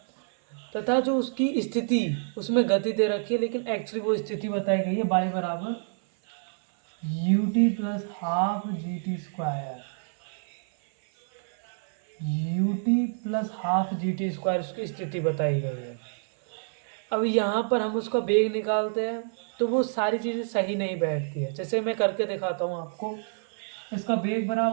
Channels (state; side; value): silent; left; 60 dB below the other